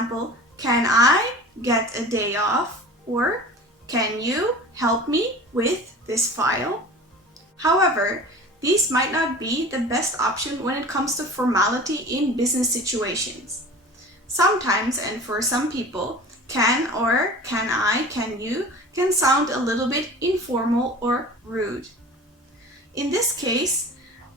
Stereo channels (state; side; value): normal; both; correlation 0.39